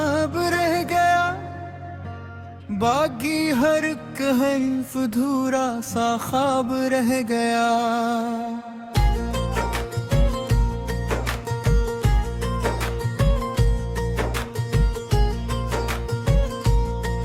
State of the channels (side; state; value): both; identical; correlation 1.00